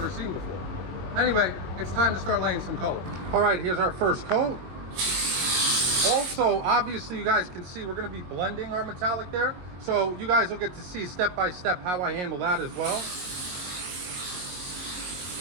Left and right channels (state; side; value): late; left; 22 ms